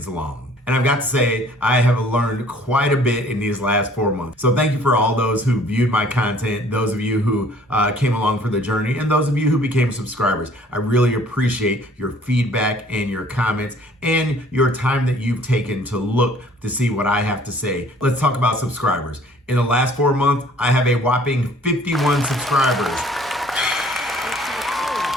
long. And I've got to say, I have learned quite a bit in these last 4 months. So thank you for all those who viewed my content, those of you who came along for the journey, and those of you who became subscribers. I really appreciate your feedback and your comments and your time that you've taken to look to see what I have to say. Let's talk about subscribers. In the last 4 months, I have a whopping 51 subscribers.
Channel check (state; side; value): normal; both; correlation 0.55